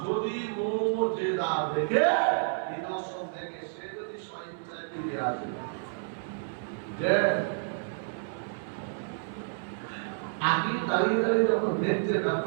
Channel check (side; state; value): left; silent; 58 dB below the other